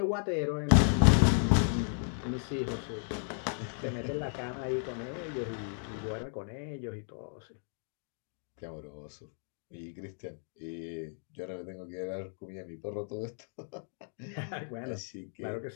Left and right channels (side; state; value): right; silent; 55 dB below the other